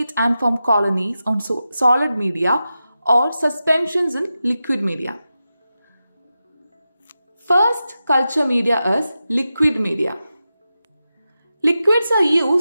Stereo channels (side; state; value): both; inverted; correlation -0.91